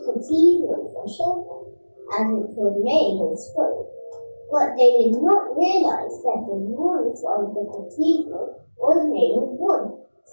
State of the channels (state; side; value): inverted; both; correlation -1.00